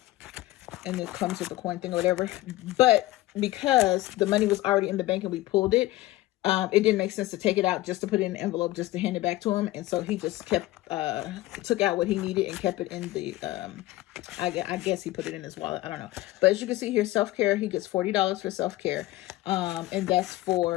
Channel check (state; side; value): quieter; right; 17.4 dB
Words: it comes with the coin thing or whatever. But because the money was already in the bank and we pulled it, it didn't make sense to take it out just to put it in an envelope just to hand it back to him. And so he just kept, took out what he needed and kept it in the, I guess he put it in his wallet. I don't know. But as you can see here, self-care, he gets $40 for self-care. And that's